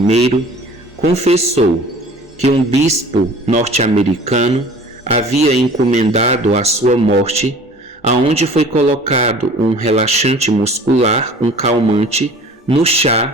confessou que um bispo norte-americano havia encomendado a sua morte, aonde foi colocado um relaxante muscular, um calmante, no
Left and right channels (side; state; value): both; normal; correlation 0.46